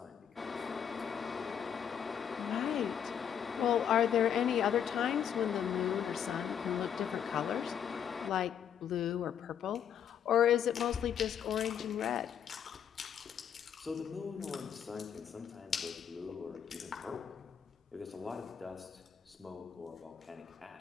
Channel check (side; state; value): right; quieter; 8.5 dB